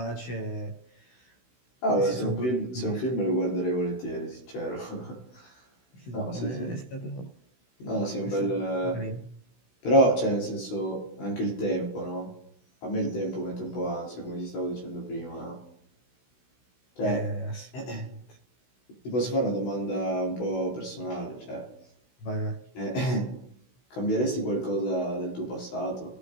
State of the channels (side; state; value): right; late; 16 ms